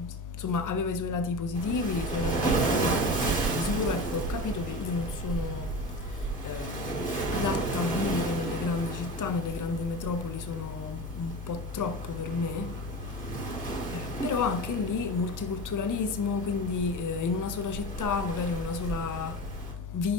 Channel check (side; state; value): both; normal; correlation 0.29